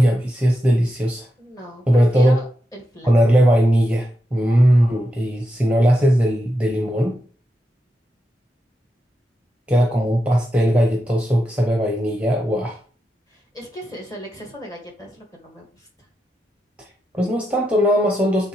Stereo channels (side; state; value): both; normal; correlation 0.87